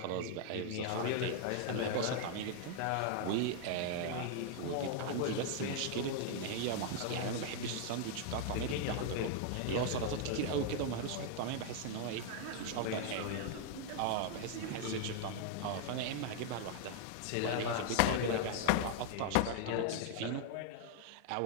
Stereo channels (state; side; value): different; both; correlation 0.00